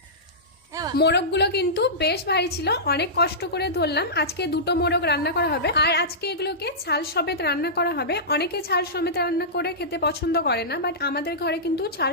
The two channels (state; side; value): normal; both; correlation -0.17